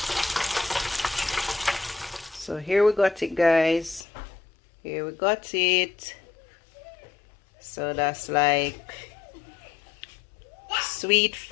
So here we got it guys. Here we got it. So that's like Sweet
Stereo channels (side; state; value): right; drops out; at 4.0 s